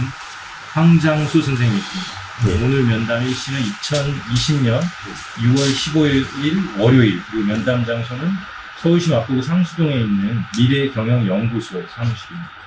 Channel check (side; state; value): both; identical; correlation 1.00